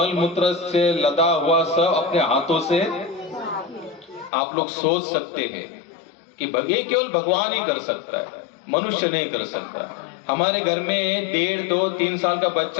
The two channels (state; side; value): drops out; right; at 4.3 s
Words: मूत्र से लदा हुआ सब अपने हाथों से, आप लोग सोच सकते हैं कि ये केवल भगवान ही कर सकता है, मनुष्य नहीं कर सकता। हमारे घर में 1.5, 2, 3 साल का